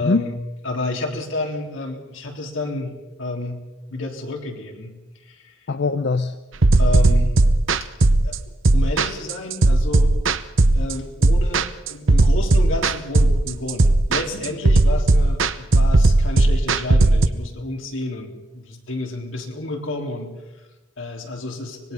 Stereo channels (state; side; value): normal; both; correlation 0.82